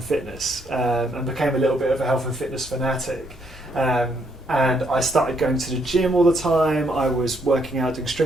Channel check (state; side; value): normal; both; correlation 0.72